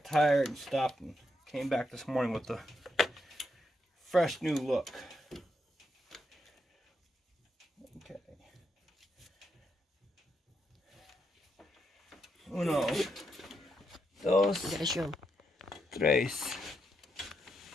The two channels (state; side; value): normal; both; correlation 0.81